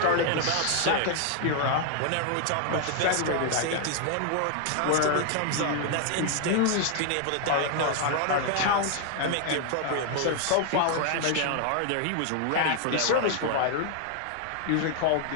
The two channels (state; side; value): different; both; correlation 0.00